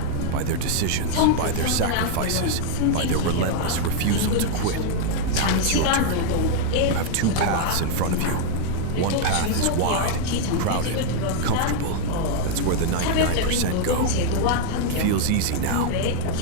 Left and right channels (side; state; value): both; different; correlation 0.00